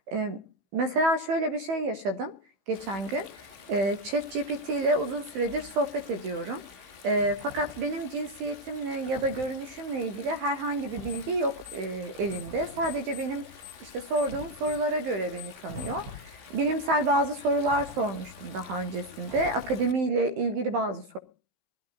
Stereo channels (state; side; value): late; left; 15 ms